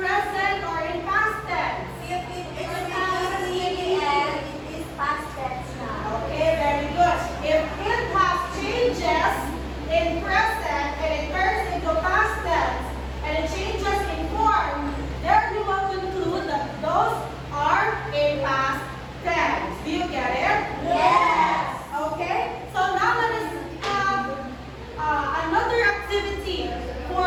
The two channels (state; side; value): identical; both; correlation 1.00